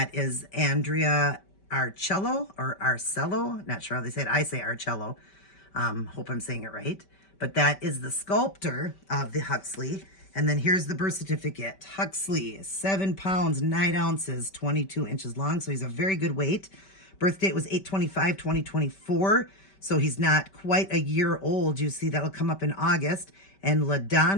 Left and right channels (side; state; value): right; late; 5.2 ms